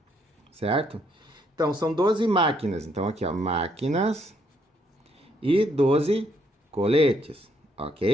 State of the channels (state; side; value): normal; both; correlation 0.71